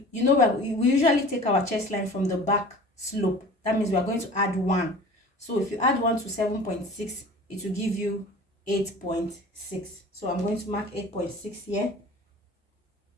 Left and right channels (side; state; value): both; normal; correlation 0.42